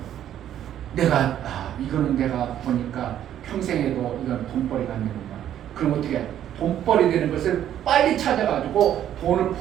이거는 내가 보니까 평생에도 이건 돈벌이가 안 되는구나. 그럼 어떻게 해? 돈벌이 되는 것을 빨리 찾아가지고 돈을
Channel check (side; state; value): left; quieter; 10.9 dB